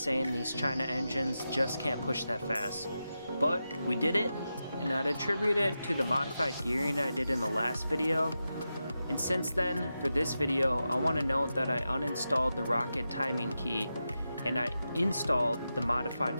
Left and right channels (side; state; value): both; inverted; correlation -0.90